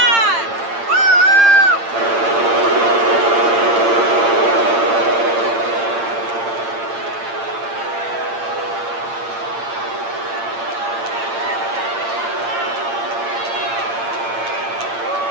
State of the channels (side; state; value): left; late; 8.7 ms